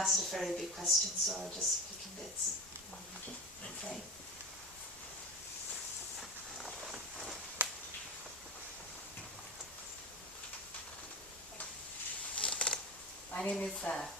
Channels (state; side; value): normal; both; correlation 0.24